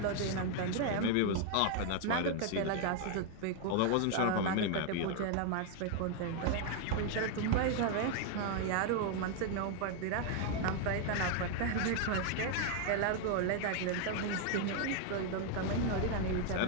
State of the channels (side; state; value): both; different; correlation 0.00